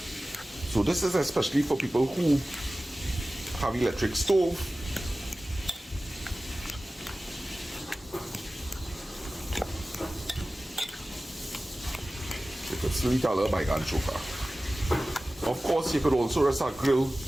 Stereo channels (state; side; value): normal; both; correlation 0.96